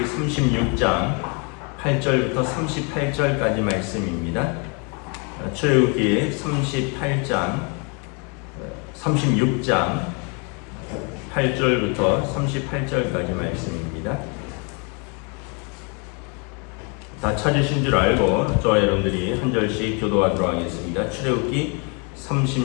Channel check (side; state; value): right; quieter; 34.3 dB